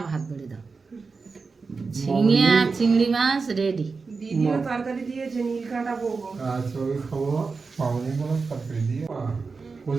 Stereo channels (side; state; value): left; quieter; 4.5 dB